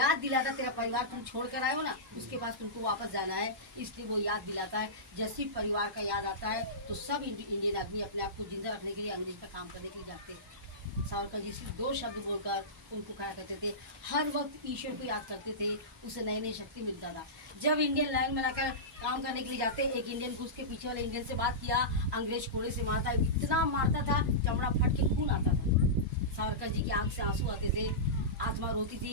दिलाता, तेरा परिवार तुम छोड़ कर आए हो ना, उसके पास तुमको वापस जाना है, इसलिए वो याद दिलाता है। जैसे ही परिवार का याद आता है तो सब इंडियन आदमी अपने आप को जिंदा रखने के लिए अंग्रेज का काम करने के लिए जाते हैं। सावरकर जी सिर्फ 2 शब्द बोलकर उनको खड़ा करते थे, हर वक्त ईश्वर को याद करते थे, उसे नई नई शक्ति मिलता था। जब इंडियन लाइन बनाकर काम करने के लिए जाते, एक इंडियन को उसके पीछे वाले इंडियन से बात किया, अंग्रेज कोड़े से मारता, इतना मारता था चमड़ा फट के खून आता था। सावरकर जी की आंख से आंसू आते थे, आत्मा रोती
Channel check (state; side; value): normal; both; correlation -0.18